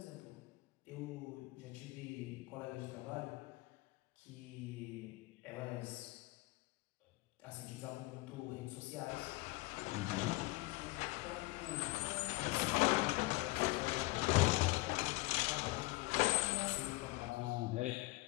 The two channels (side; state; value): right; quieter; 22.6 dB